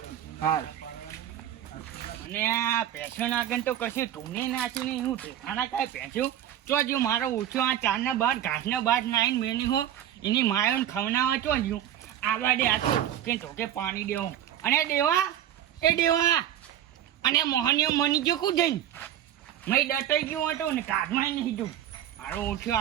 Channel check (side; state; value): left; quieter; 11.1 dB